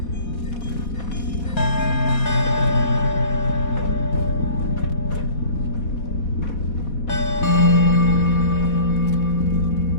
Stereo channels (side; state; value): right; late; 4.2 ms